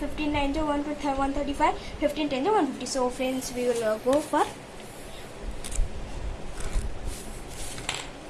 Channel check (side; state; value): both; identical; correlation 1.00